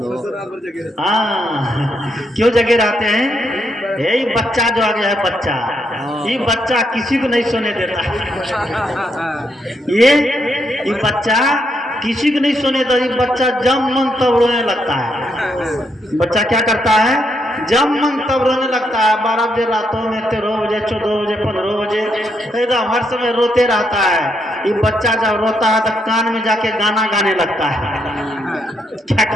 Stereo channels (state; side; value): normal; both; correlation 0.77